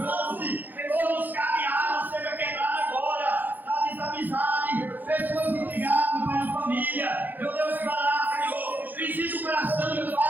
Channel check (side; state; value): left; late; 0.086 ms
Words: todos os cadeados, seja quebrado agora. Desamizade, pessoas intrigadas, Pai, na família. Meu Deus, vai lá, Senhor. Visita o coração, meu